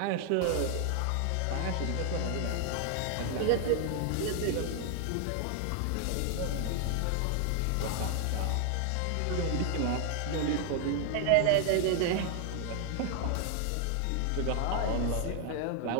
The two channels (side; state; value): both; different; correlation 0.00